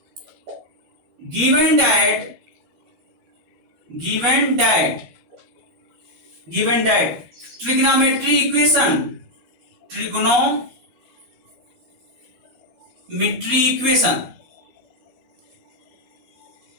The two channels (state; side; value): late; left; 12 ms